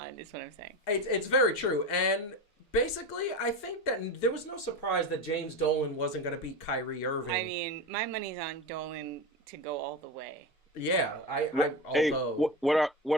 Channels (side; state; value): both; normal; correlation 0.22